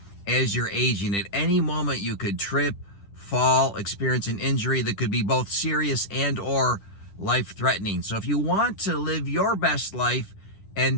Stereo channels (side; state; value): right; late; 10 ms